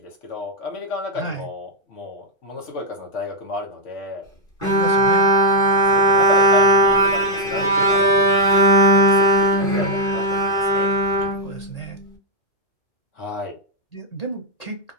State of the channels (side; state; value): right; late; 2.5 ms